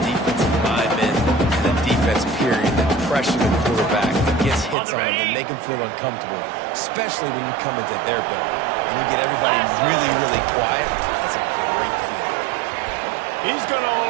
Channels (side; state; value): left; drops out; at 4.8 s